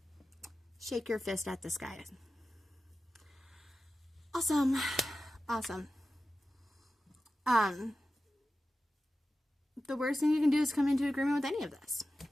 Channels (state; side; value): normal; both; correlation 0.94